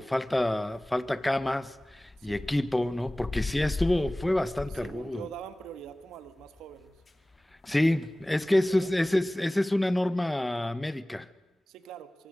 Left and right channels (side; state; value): both; normal; correlation 0.98